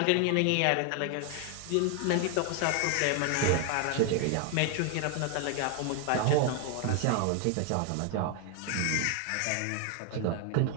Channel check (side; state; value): both; different; correlation 0.00